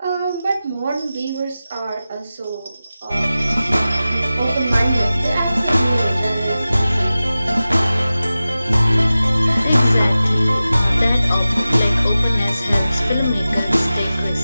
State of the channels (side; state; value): both; inverted; correlation -0.95